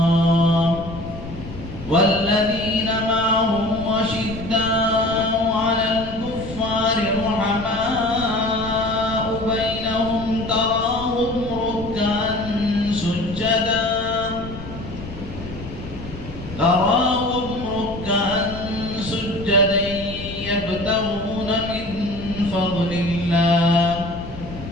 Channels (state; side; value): noise; left; rumble, 12 dB below the sound